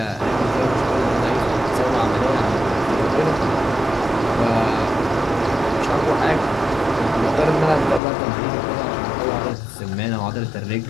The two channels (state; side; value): drops out; right; at 8.0 s